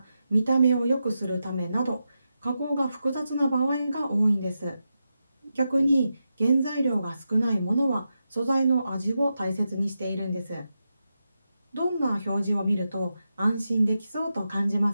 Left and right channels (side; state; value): both; inverted; correlation -0.89